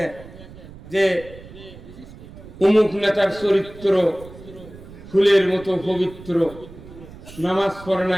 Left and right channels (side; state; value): right; noise; rumble, 18 dB below the sound